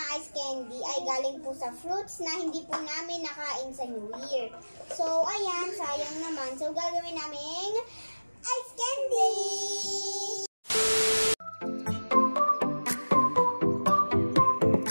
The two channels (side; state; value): both; inverted; correlation -1.00